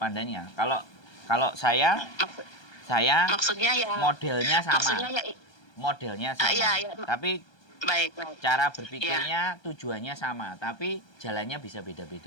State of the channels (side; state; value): right; late; 1.3 ms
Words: Kalau saya maksudnya ya modelnya sama. Maksudnya ya modelnya sama. Ya. Tapi baik. Cara berpikirnya tujuannya sama, tapi jalannya bisa